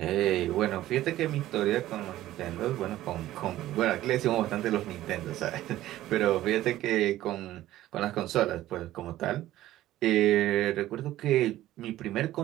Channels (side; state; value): left; quieter; 14.6 dB